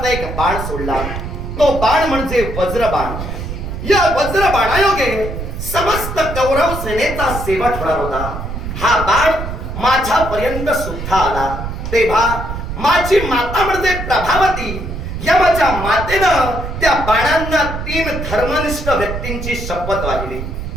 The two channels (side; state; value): right; noise; rumble, 6 dB below the sound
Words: एक बाण सोडला. तो बाण म्हणजे वज्रबाण. या वज्रबाणायोगे समस्त कौरव सेनेचा शेवट होणार होता. हा बाण माझ्यापर्यंत सुद्धा आला. तेव्हा माझी माता म्हणजे प्रभावती या माझ्या मातेनं त्या बाणांना 3 धर्मनिष्ठ व्यक्तींची शपथ वाहिली.